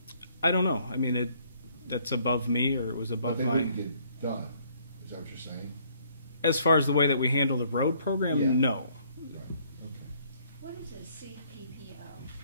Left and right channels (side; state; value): both; inverted; correlation -0.64